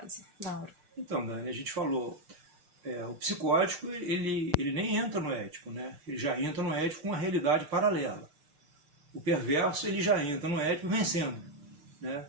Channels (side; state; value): left; late; 6.6 ms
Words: Mauro? Então, Dani, a gente falou, o psicótico ele nem entra no ético, né? Ele já entra no ético com uma realidade paralela. O perverso ele já entra no ético vencendo, né?